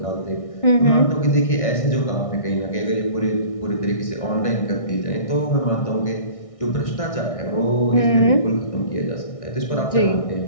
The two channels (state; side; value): late; right; 1.6 ms